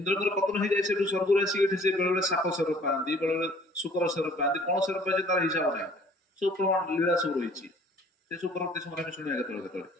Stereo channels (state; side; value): normal; both; correlation 0.54